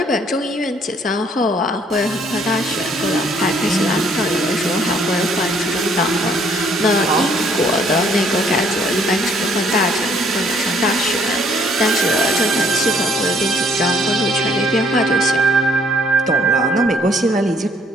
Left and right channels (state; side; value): normal; both; correlation 0.64